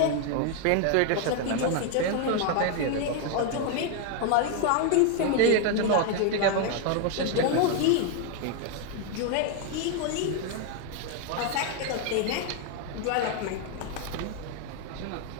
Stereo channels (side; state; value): both; different; correlation 0.00